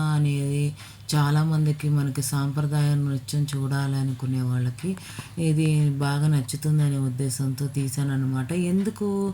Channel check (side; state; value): both; identical; correlation 1.00